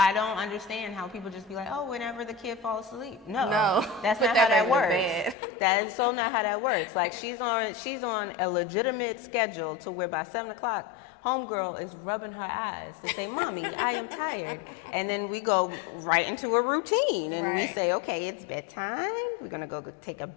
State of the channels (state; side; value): drops out; right; at 5.4 s